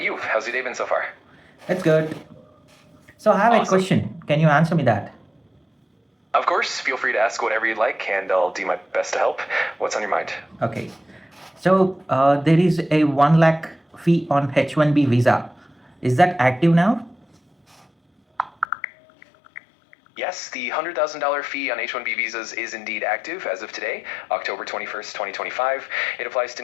you? How's your day been so far? It's good. So, I have a Awesome. question. Can you answer me that? Of course, feel free to ask whatever you'd like, and I'll do my best to help. What's on your mind? Okay. So, there is a 1 lakh fee on H1B visa. Is that active now? Yes, the $100,000 fee on H-1B visas is indeed active as of today, October 21st, 2025. It applies to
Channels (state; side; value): drops out; right; at 18.7 s